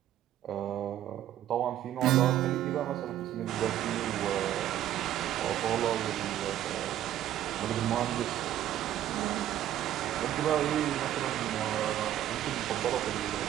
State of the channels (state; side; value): quieter; left; 12.1 dB